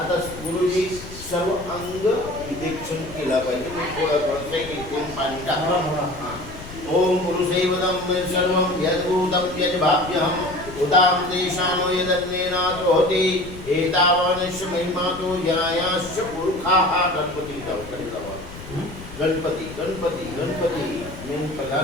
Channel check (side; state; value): left; noise; rumble, 14 dB below the sound